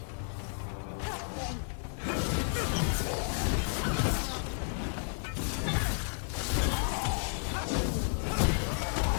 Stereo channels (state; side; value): silent; right; digital silence